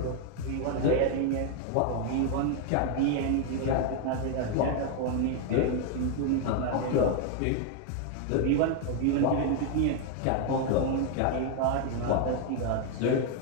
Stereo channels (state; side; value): different; both; correlation 0.01